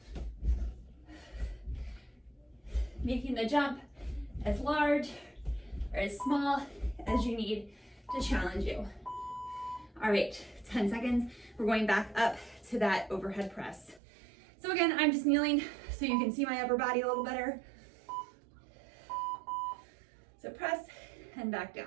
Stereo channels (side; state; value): left; drops out; at 14.0 s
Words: Making the jump as large or as small as you need to challenge you. All right, 10 seconds. We're going back up to that overhead press. So again, I'm just kneeling so you can see my upper body a little better. So press and back